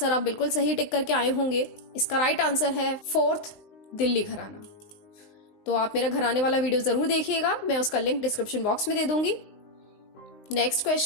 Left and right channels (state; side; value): late; right; 19 ms